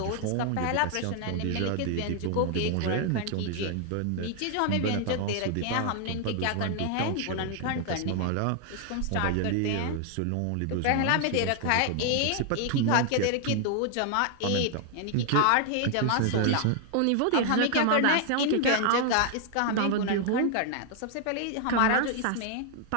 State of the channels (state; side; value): different; both; correlation 0.00